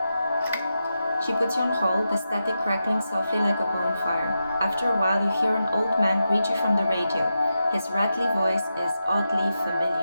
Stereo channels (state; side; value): inverted; both; correlation -0.89